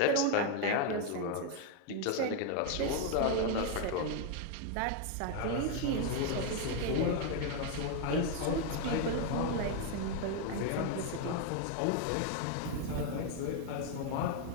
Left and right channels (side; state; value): both; different; correlation 0.01